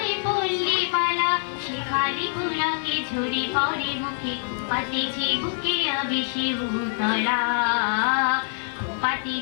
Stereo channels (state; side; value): silent; right; 56 dB below the other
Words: পল্লী বালা শেফালি ফুলকে ঝরে পড়ে মুখে পাতিছে বুকে আবেশে উতলা